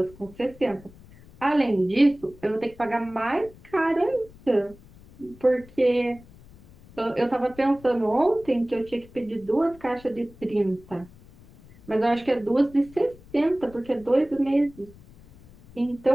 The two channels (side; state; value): left; noise; rumble, 23 dB below the sound